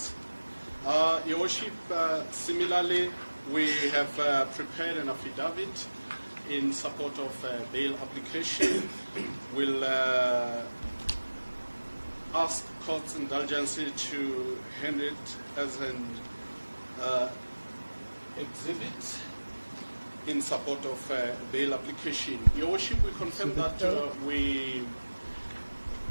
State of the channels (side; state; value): both; inverted; correlation -1.00